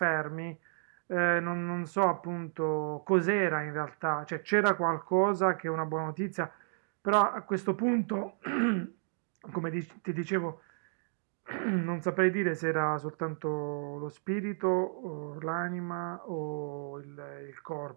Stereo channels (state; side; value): silent; left; digital silence